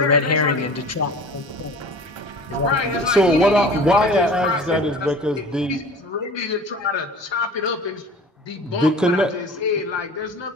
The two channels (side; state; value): both; normal; correlation 0.41